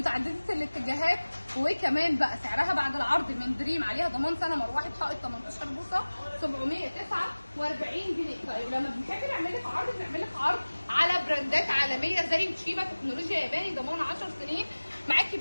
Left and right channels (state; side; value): inverted; both; correlation -1.00